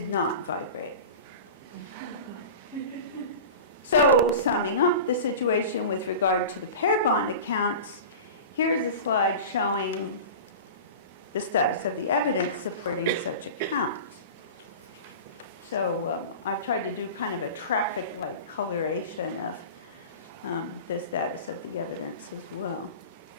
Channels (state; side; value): inverted; both; correlation -0.34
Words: not vibrate. So, summing up the situation with regard to the pair bond accounts, here's a slide showing the status of the evidence supporting such accounts. So I've tried to do kind of a traffic-like coloration of the status of the evidence as well.